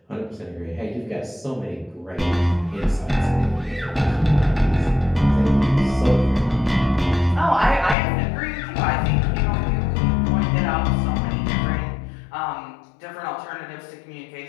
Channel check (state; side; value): drops out; right; at 8.0 s